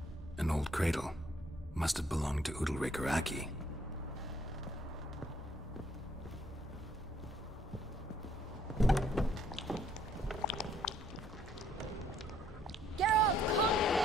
An old cradle. Must have belonged to Udalric or Aki. Geralt, come!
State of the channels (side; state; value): both; normal; correlation 0.66